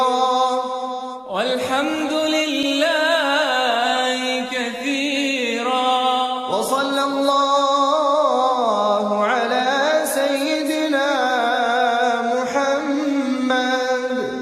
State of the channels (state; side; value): identical; both; correlation 1.00